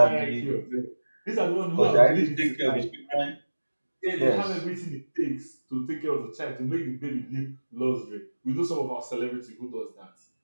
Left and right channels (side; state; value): both; inverted; correlation -1.00